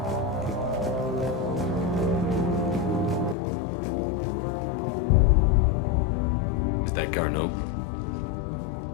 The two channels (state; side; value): drops out; right; at 3.4 s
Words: Is that Garneau?